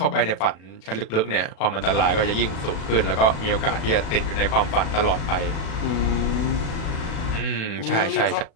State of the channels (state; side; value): late; right; 36 ms